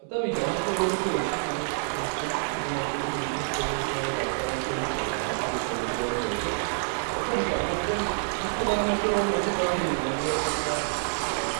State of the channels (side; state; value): left; silent; 60 dB below the other